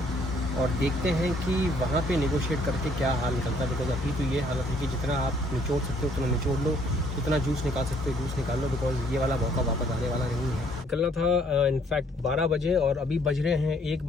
और देखते हैं कि वहाँ पे नेगोशिएट करके क्या हाल निकलता है। बिकॉज अभी तो ये हालत है कि जितना आप निचोड़ सकते हो उतना निचोड़ लो, जितना जूस निकाल सकते हो जूस निकाल लो, बिकॉज ये वाला मौका वापस आने वाला नहीं है। निकलना था इनफैक्ट 12 बजे और अभी बज रहे हैं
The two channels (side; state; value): both; normal; correlation 0.64